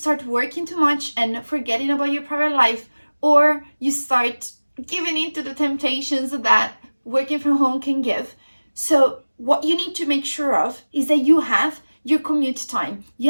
working too much and forgetting about your private life, or you start giving in to the temptations that working from home can give. So what you need to make sure of is that you have your commute time,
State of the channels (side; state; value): both; inverted; correlation -1.00